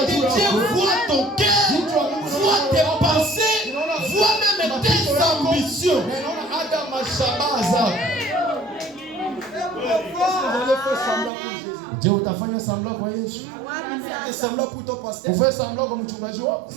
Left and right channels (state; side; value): drops out; left; at 11.3 s